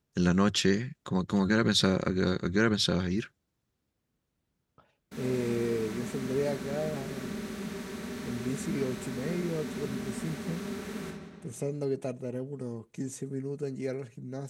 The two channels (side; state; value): both; identical; correlation 1.00